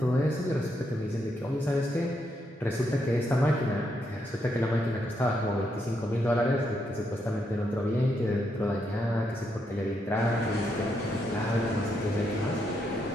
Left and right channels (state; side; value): normal; both; correlation 0.79